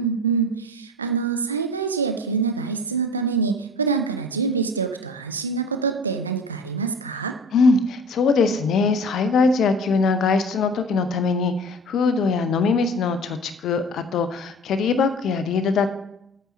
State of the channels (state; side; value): normal; both; correlation 0.40